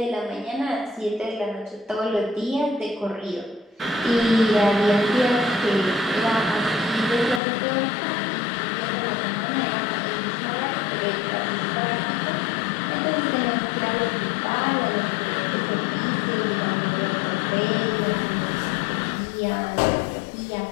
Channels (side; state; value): right; drops out; at 7.4 s